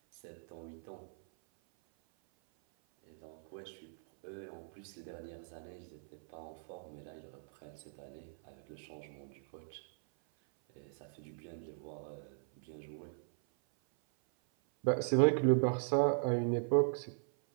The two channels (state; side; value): silent; left; 52 dB below the other